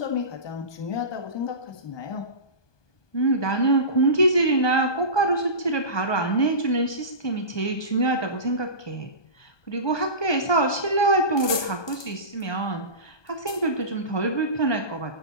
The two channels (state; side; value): late; right; 1.2 ms